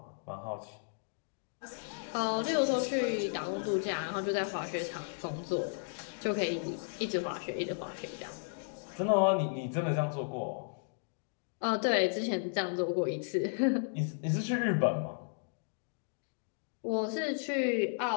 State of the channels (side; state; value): right; silent; digital silence